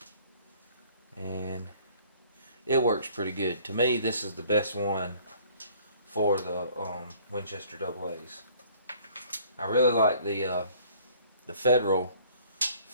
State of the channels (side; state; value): both; inverted; correlation -0.56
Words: And it works pretty good. To me, this is the best one for the Winchester AA's. I really like the Federal